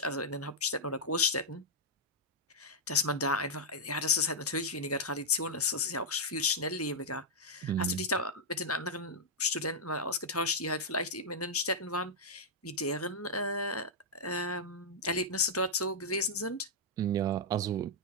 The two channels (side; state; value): both; normal; correlation -0.06